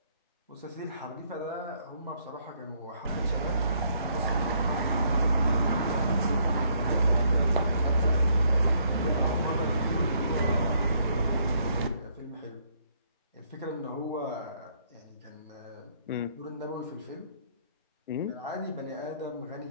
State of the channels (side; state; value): both; inverted; correlation -0.68